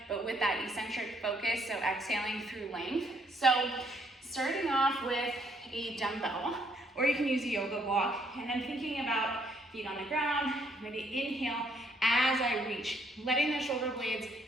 but with that eccentric focus, so exhaling through length. So starting off with a dumbbell, or you can use a yoga block, and I'm thinking about feet on the ground. I'm going to inhale as I reach, letting the shoulder blades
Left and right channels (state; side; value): normal; both; correlation 0.69